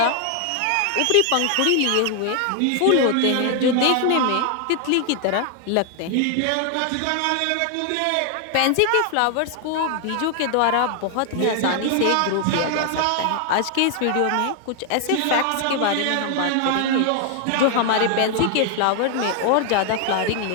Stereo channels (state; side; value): different; both; correlation 0.00